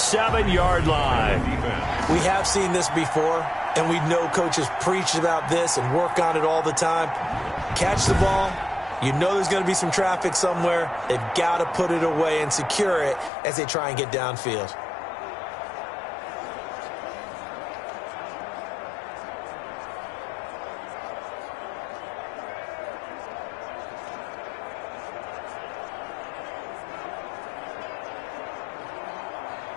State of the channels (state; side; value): drops out; right; at 13.3 s